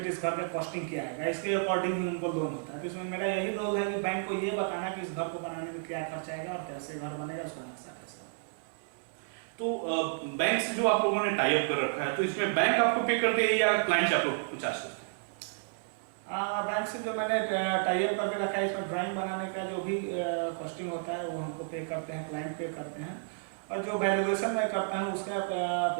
इस घर का कॉस्टिंग क्या आएगा, इसके अकॉर्डिंग ही उनको लोन होता है। तो इसमें मेरा यही रोल है कि बैंक को ये बताना कि इस घर को बनाने में क्या खर्च आएगा और कैसे घर बनेगा, उसका नक्शा कैसे। तो बैंक से जो आप लोगों ने टाई अप कर रखा है, तो इसमें बैंक आपको पे करते हैं या क्लाइंट से आप लोग चार्ज करते हैं? बैंक से जो मैंने टाई अप करके रखा है, इसमें ड्राइंग बनाने का जो भी कॉस्टिंग होता है वो हमको पे करते हैं, क्लाइंट पे करते हैं, और जो वैल्यूएशन मैं करता हूँ उसका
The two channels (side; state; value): left; silent; 57 dB below the other